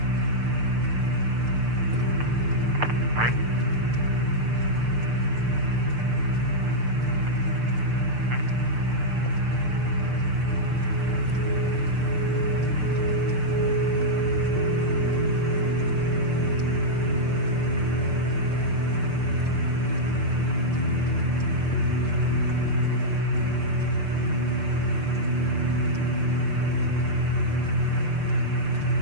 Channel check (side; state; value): left; late; 6.7 ms